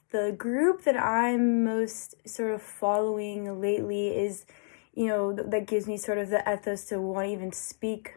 group that I'm most sort of following lately is, that gives me sort of the ethos to want to even speak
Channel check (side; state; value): right; silent; digital silence